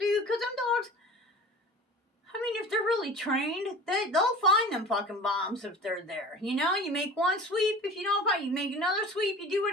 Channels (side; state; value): both; normal; correlation 0.39